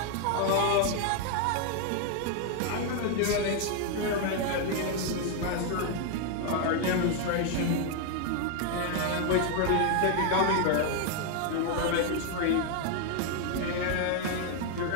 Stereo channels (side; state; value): both; different; correlation 0.00